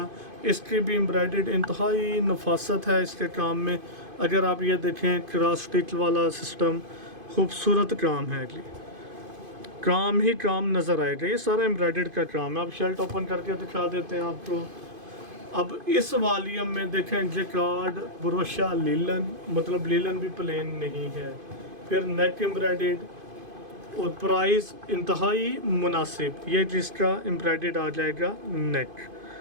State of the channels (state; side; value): late; left; 2.5 ms